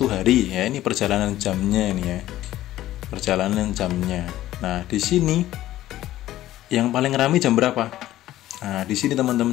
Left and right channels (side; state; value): right; quieter; 14.3 dB